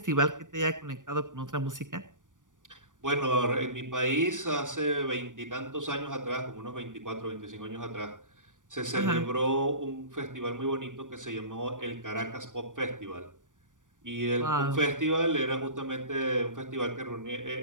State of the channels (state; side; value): late; left; 0.87 ms